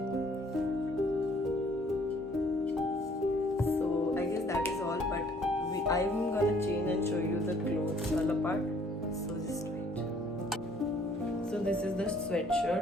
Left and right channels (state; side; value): normal; both; correlation 0.60